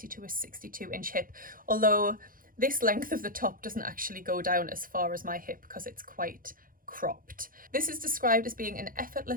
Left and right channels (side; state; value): left; late; 0.41 ms